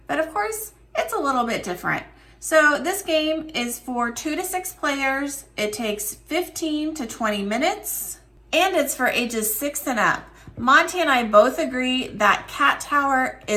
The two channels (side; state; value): both; identical; correlation 1.00